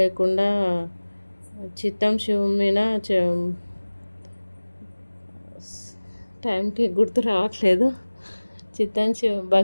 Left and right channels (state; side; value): inverted; both; correlation -1.00